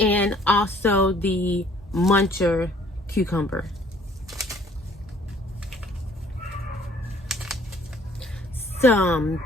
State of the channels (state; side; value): normal; both; correlation 0.58